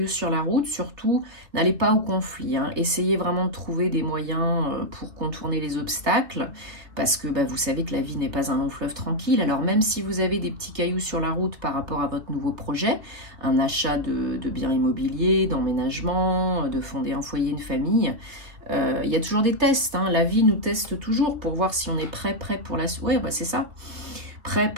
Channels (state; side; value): late; left; 2.8 ms